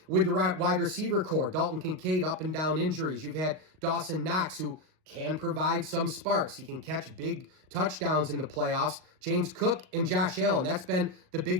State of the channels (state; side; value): late; left; 38 ms